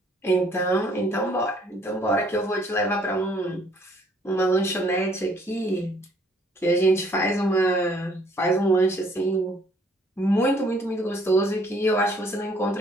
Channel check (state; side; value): normal; both; correlation 0.62